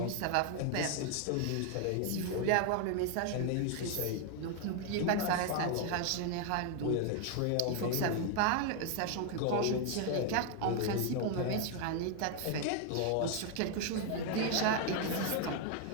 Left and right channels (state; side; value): different; both; correlation 0.01